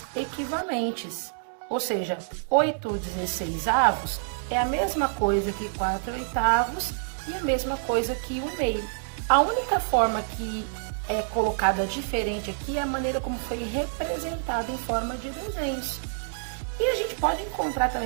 equivalentes, ou seja, 8 16avos é a mesma coisa que 4 oitavos e a mesma coisa que 1 meio. A única forma que é colocada diferente aqui é a maneira como foi representada em forma de desenhos. E a gente pode encontrar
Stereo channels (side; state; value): left; silent; digital silence